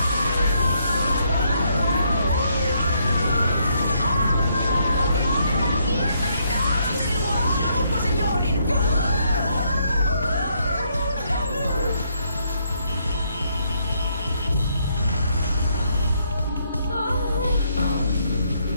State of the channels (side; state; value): both; inverted; correlation -0.73